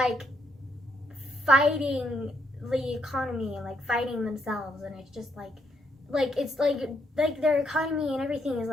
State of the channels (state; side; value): normal; both; correlation 0.75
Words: fighting the economy and like fighting themselves, and it's just like it's like their economy and everything is